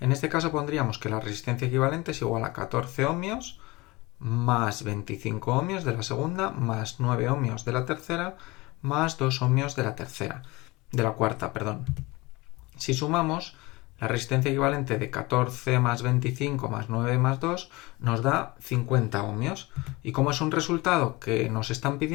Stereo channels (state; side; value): quieter; right; 22.4 dB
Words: En este caso pondríamos que la resistencia equivalente es igual a 14 ohmios más 25 ohmios de la segunda más 9 ohmios de la tercera más 2 ohmios de la cuarta. Si sumamos, la resistencia equivalente de 14 más 25 más 9 más 2 nos da 50 ohmios. Y como es un resultado que nos están